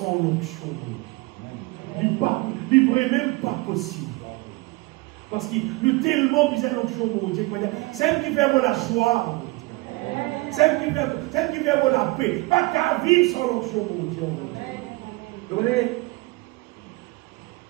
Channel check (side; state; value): left; quieter; 22.8 dB